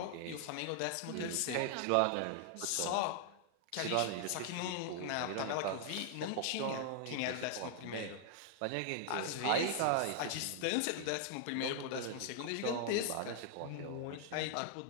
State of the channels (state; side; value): different; both; correlation 0.00